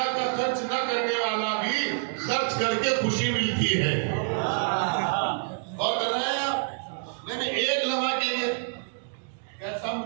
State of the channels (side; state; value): left; silent; digital silence